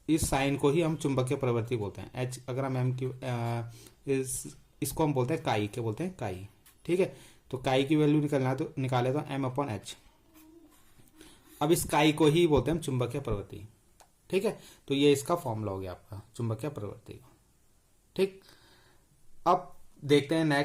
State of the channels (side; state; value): both; identical; correlation 1.00